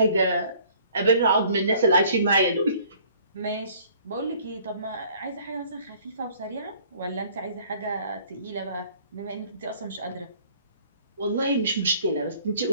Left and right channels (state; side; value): inverted; both; correlation -0.56